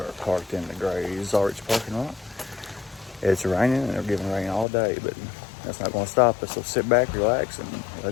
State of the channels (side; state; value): right; drops out; at 4.7 s